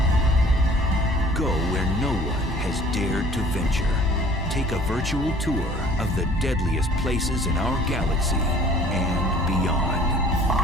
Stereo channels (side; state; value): both; normal; correlation 0.51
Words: Go where no one has dared to venture. Take a virtual tour of the deadliest places in our galaxy and beyond.